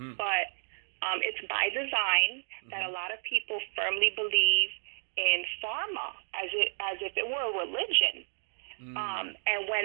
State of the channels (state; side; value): silent; left; digital silence